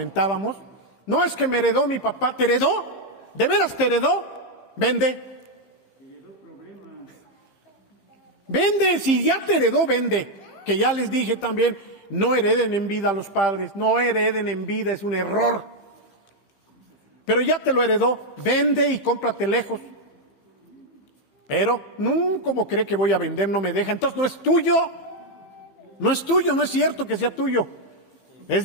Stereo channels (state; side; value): late; right; 15 ms